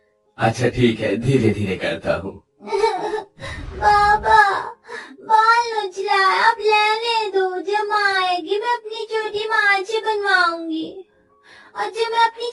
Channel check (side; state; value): both; identical; correlation 1.00